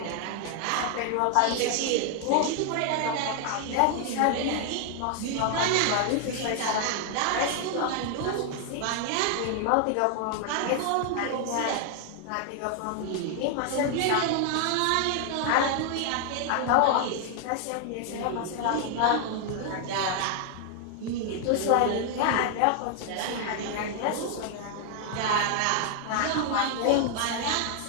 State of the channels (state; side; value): different; both; correlation 0.00